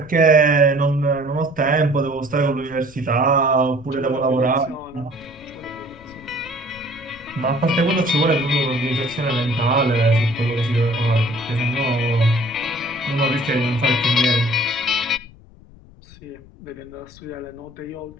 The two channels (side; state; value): left; noise; rumble, 23 dB below the sound